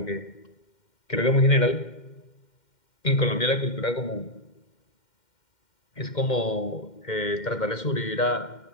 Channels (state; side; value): late; right; 2.1 ms